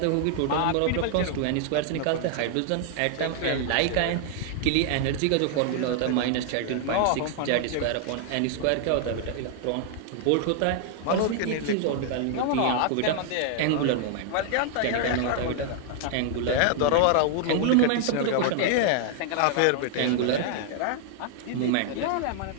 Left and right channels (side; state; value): both; different; correlation 0.00